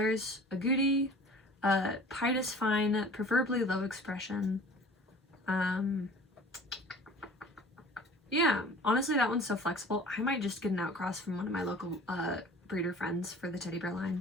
agouti, pied is fine, preferably low expression. Yeah, honestly, that one's so flexible. I might just get an outcross from one of my local breeder friends for the teddy bear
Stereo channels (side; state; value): both; normal; correlation 0.45